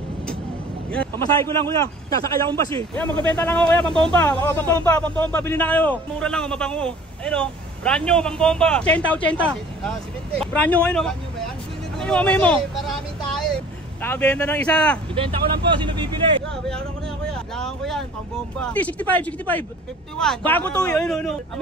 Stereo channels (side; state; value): both; normal; correlation 0.48